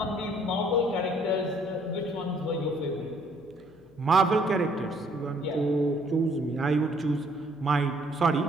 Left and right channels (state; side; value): noise; left; hum, 27 dB below the sound